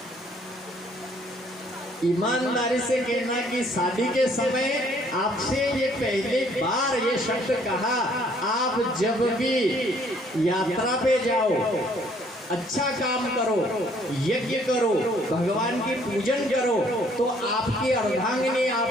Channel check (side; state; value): both; normal; correlation 0.62